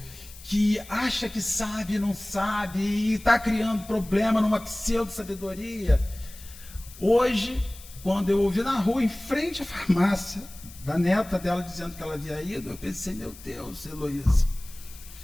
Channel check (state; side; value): noise; left; hiss, 19 dB below the sound